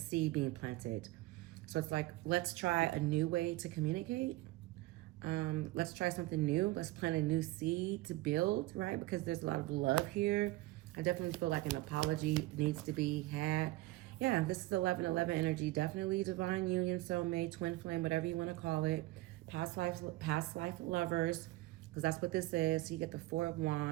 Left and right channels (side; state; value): left; quieter; 18.8 dB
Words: being planted. So it's like, let's try a new way to communicate. Let's try something new. Let's plant a new seed to build, right? Because there's a lot of love here. I definitely feel like an apology needs to be had. Yeah, this is 1111 energy. Definitely divine union, soulmate, twin flame, whatever you want to call it. Past life lovers, because that's what this is. So you get the 4 of